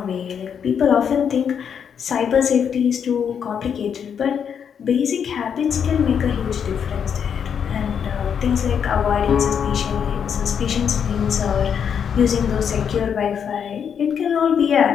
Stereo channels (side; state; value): right; quieter; 7.6 dB